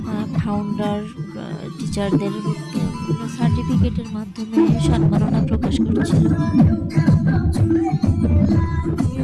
ফাউন্ডার টিচারদের সার্টিফিকেটের মাধ্যমে সম্মাননা প্রকাশ করছিল।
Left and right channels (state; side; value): identical; both; correlation 1.00